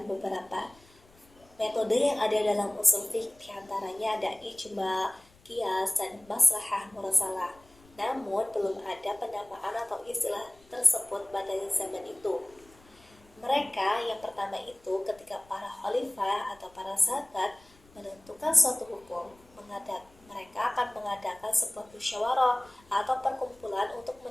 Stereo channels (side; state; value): left; noise; rumble, 28 dB below the sound